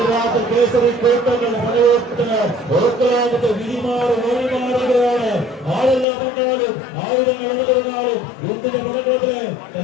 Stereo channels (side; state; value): right; drops out; at 6.1 s